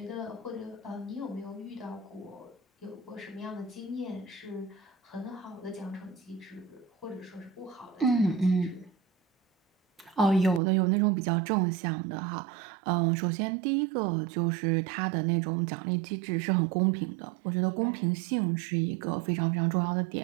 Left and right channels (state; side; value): drops out; left; at 10.6 s